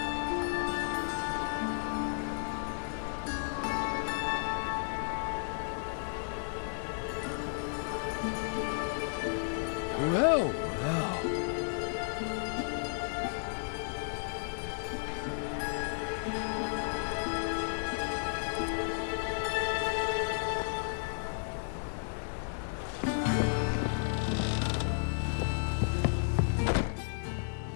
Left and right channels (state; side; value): silent; right; 56 dB below the other